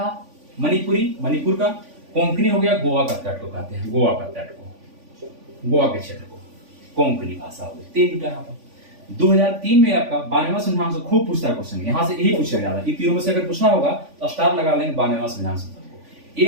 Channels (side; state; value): left; late; 3.5 ms